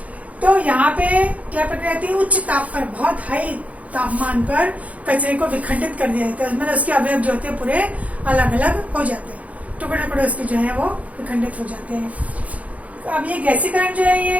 तो यहाँ पे क्या प्रक्रिया आती है, उच्च ताप पर, बहुत हाई तापमान पर कचरे को विखंडित कर दिया जाता है। मतलब उसके अवयव जो होते हैं पूरे अलग अलग हो जाते हैं, टुकड़े टुकड़े उसके जो है वो विखंडित हो जाते हैं। अब ये गैसीकरण जो है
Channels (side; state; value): left; late; 0.068 ms